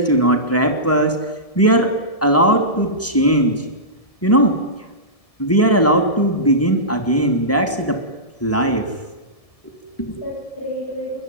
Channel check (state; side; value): late; right; 1.7 ms